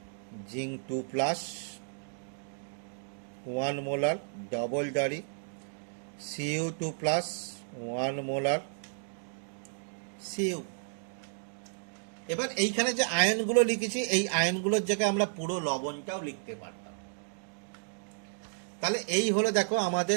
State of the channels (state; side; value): silent; left; digital silence